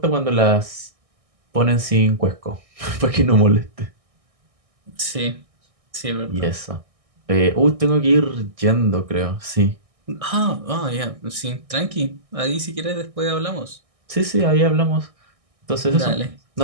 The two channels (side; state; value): left; late; 1.6 ms